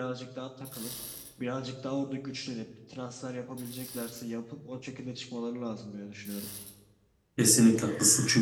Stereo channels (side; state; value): both; identical; correlation 1.00